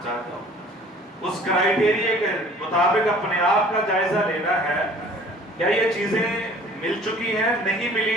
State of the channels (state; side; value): normal; both; correlation 0.50